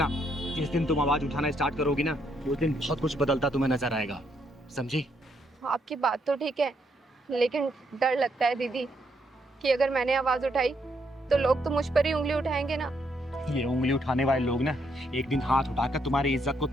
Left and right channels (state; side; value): normal; both; correlation 0.75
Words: जिस दिन तुम आवाज उठाना स्टार्ट करोगी ना, उस दिन बहुत कुछ बदलता तुम्हें नजर आएगा, समझी? आपकी बात तो ठीक है, लेकिन डर लगता है दीदी कि अगर मैंने आवाज उठाई तो लोग तो मुझ पर ही उंगली उठाएंगे ना। ये उंगली उठाने वाले लोग ना एक दिन हाथ उठाकर तुम्हारी इज्जत को